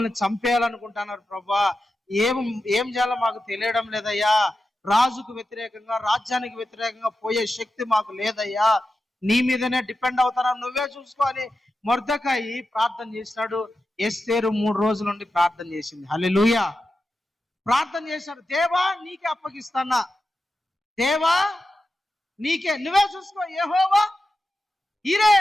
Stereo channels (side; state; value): both; normal; correlation 0.91